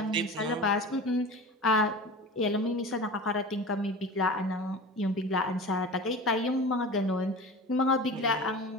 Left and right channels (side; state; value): both; normal; correlation 0.34